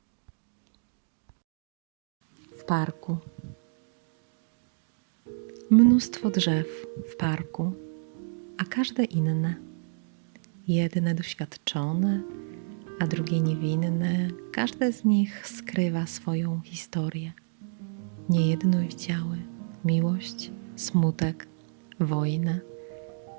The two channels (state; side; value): silent; left; digital silence